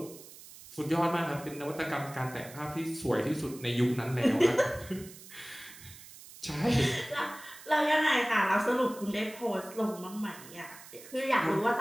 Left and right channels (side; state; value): right; noise; hiss, 18 dB below the sound